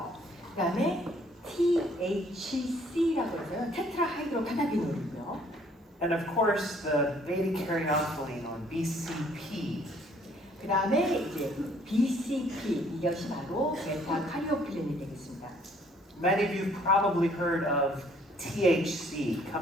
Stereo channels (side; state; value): both; normal; correlation 0.61